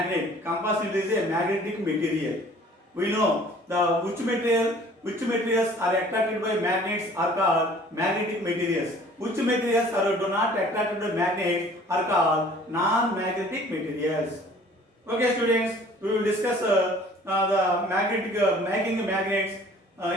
Compass needle is a magnetic material. We know which materials are attracted by magnets are called magnetic materials. Which materials are do not attracted by magnets are called non-magnetic materials. Okay, students, we will discuss the making magnets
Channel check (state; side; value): normal; both; correlation 0.51